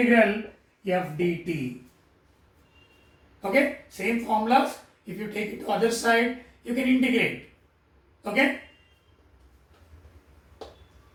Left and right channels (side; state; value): both; identical; correlation 1.00